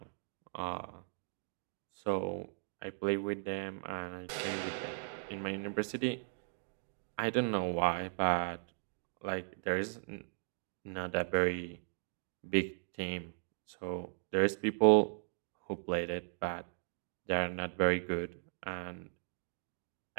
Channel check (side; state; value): left; silent; digital silence